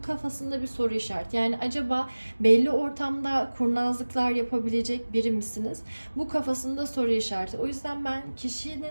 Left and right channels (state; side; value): inverted; both; correlation -1.00